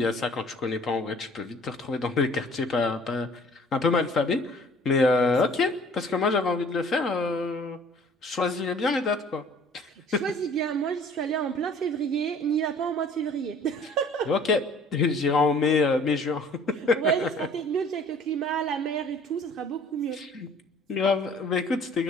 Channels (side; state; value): both; normal; correlation 0.52